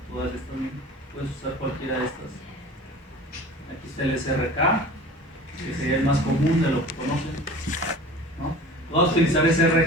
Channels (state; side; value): normal; both; correlation 0.40